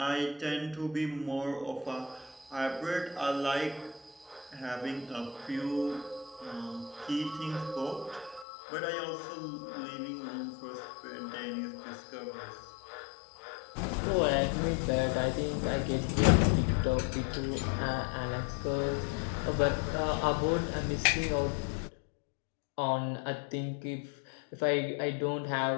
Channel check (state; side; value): drops out; right; at 8.5 s